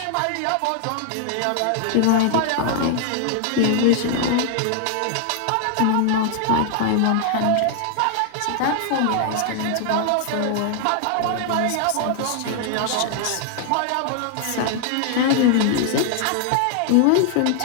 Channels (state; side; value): different; both; correlation 0.00